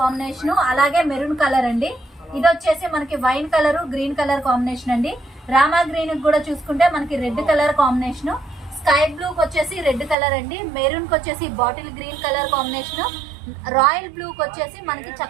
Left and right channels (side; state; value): left; drops out; at 10.2 s